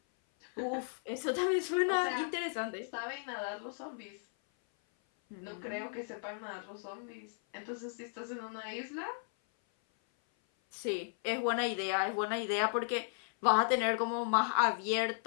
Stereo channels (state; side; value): silent; right; 54 dB below the other